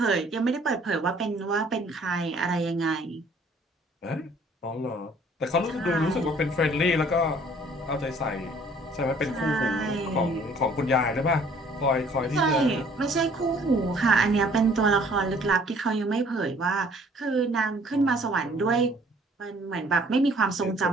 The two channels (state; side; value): normal; both; correlation 0.57